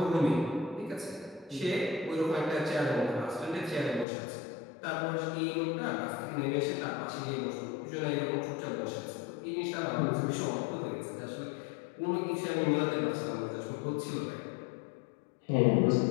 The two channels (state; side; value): drops out; right; at 4.0 s